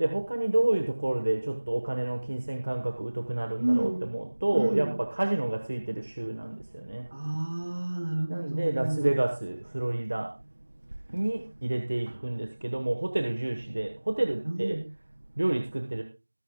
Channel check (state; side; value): inverted; both; correlation -1.00